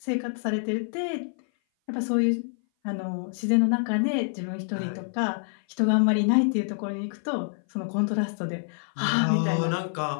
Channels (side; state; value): right; silent; 57 dB below the other